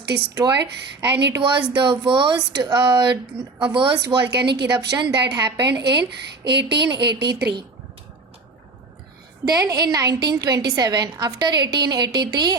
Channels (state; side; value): quieter; left; 3.6 dB